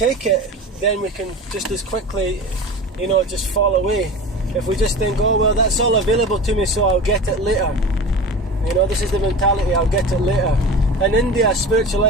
it, then we can just as quickly, just fall away. If we just think, oh, well, that's all available to me, so I'll get it later. This is the mentality, I'll get it later. In India, spiritual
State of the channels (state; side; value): normal; both; correlation 0.32